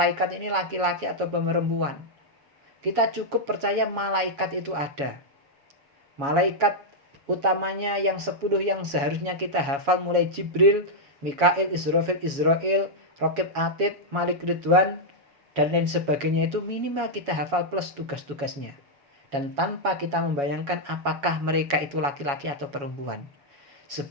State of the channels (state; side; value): late; left; 7.1 ms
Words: ini laki-laki atau perempuan. Kita cukup percaya malaikat itu ada. Malaikat utamanya yang 10 yang seharusnya kita hafal mulai Jibril, Mikail, Israfil, Raqib Atid, Malik Ridwan, dan lain sebagainya itu minimal kita hafal plus tugas-tugasnya. Dan tanpa kita membayangkan apakah mereka itu laki-laki atau perempuan.